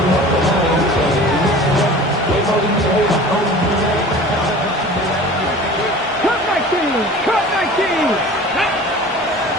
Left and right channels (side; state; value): both; normal; correlation 0.41